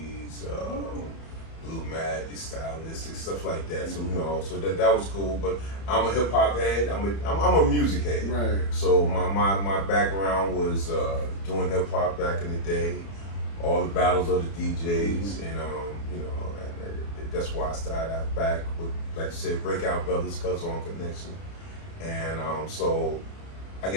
Blue Magic, Stylistic, stuff like that. So you know, so that was cool. But I'm a hip hop head. I'm a music head. Right. So my background was doing hip hop back in the day, all the battles of the DJs, and you know, and that's why I started out back with, like you said, Breakout Brothers, Kazone Connection. And so I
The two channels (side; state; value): right; late; 31 ms